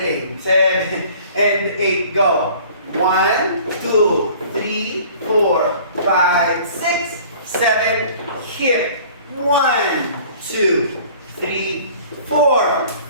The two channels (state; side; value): inverted; both; correlation -0.49